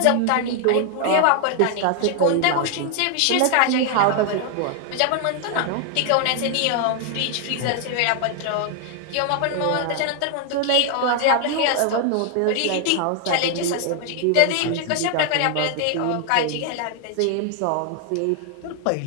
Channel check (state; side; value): different; both; correlation 0.00